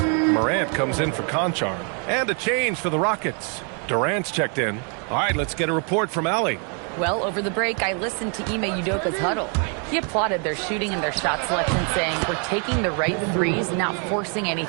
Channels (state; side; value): quieter; left; 39.1 dB